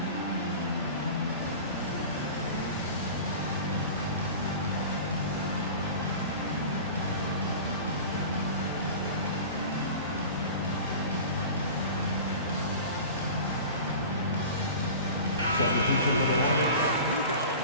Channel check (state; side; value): inverted; both; correlation -0.37